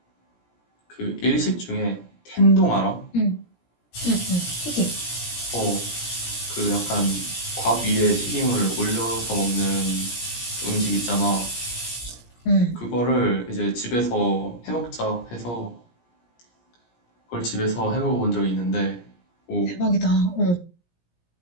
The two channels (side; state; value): right; late; 17 ms